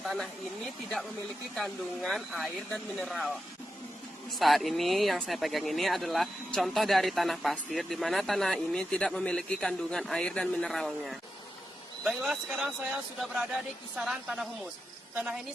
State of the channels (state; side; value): normal; both; correlation 0.88